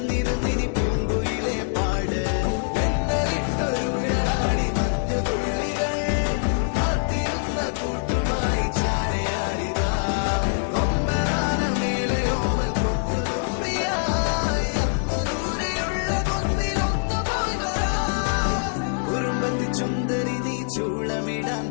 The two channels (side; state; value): right; silent; 62 dB below the other